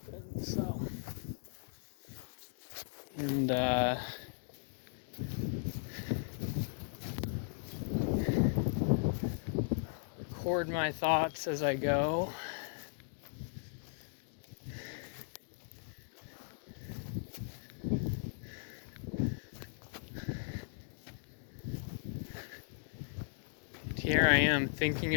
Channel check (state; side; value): silent; right; digital silence